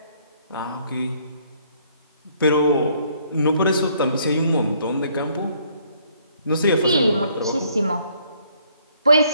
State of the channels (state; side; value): inverted; both; correlation -0.65